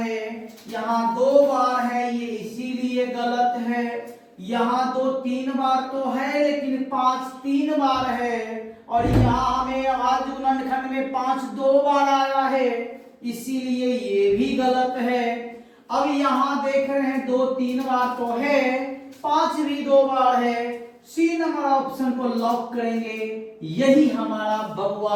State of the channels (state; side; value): identical; both; correlation 1.00